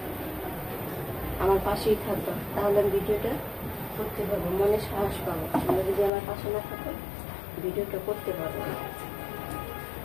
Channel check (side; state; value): right; drops out; at 6.1 s